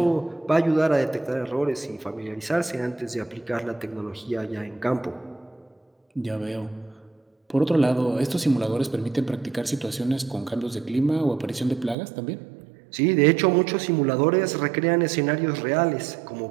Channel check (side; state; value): left; drops out; at 12.0 s